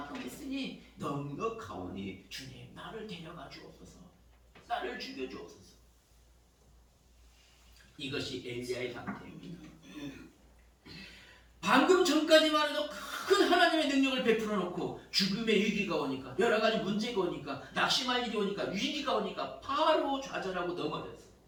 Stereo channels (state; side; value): identical; both; correlation 1.00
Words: 했으니 넉넉하오니 주님, 나를 데려가 주옵소서, 나를 죽여 주옵소서. 이것이 엘리야의 상태입니다. 방금 전까지만 해도 큰 하나님의 능력을 베풀어 놓고 죽음의 위기가 오니까, 여러 가지 문제가 오니까, 낙심할 일이 오니까, 위기가 오니까 바로 좌절하고 넘어졌어.